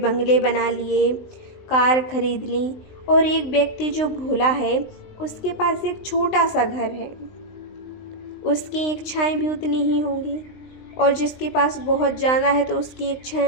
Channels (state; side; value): late; right; 19 ms